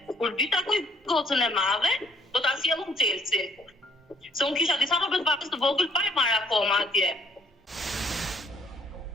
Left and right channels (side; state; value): both; normal; correlation 0.65